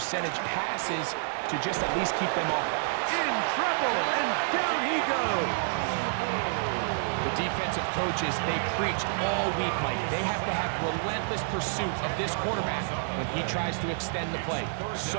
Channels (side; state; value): left; silent; digital silence